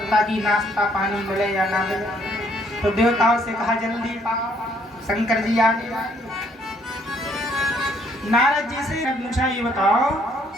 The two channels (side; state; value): both; normal; correlation 0.66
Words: कि नाश्ता पानी मिले या ना मिले, तो देवताओं से कहा जल्दी पाओ शंकर जी आ गए। नारद जी से पूछा ये बताओ